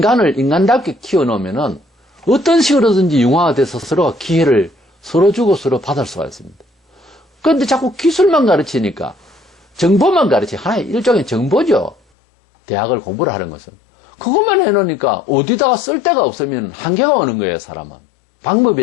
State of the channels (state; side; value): drops out; right; at 12.0 s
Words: 인간답게 키워놓으면은 어떤 식으로든지 융화돼서 서로가 기회를 서로 주고 서로 받을 수가 있습니다. 그런데 자꾸 기술만 가르치니까, 정보만 하나의 일종의 정보죠. 대학을 공부를 하는 것은. 그것만 해놓으니까 어디다가 쓸 데가 없으면 한계가 오는 거예요, 사람은.